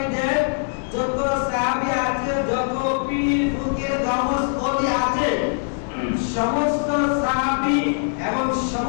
দেন। যত সাহাবী আছে, যত পীর ফকির গাউস ওলি আছে, সমস্ত সাহাবী এবং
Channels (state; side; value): silent; right; digital silence